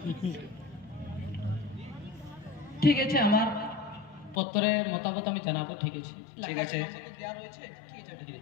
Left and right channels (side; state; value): right; drops out; at 4.4 s